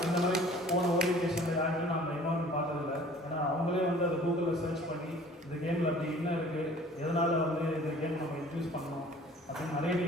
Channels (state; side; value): normal; both; correlation 0.50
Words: இந்த மாதிரி போன ஓரியன்டேஷனில் யாருமே நான் இன்வால்மெண்ட் பார்த்ததில்லை. ஏன்னா அவங்களே வந்து அதை கூகுளில் சர்ச் பண்ணி இந்த கேமில் அப்படி என்ன இருக்குது, எதனால் வந்து இந்த கேம் நம்ம இன்ட்ரடியூஸ் பண்ணணும் அப்படின்னு நிறைய